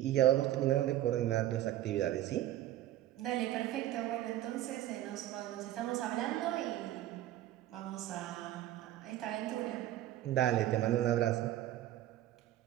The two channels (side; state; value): left; quieter; 13.6 dB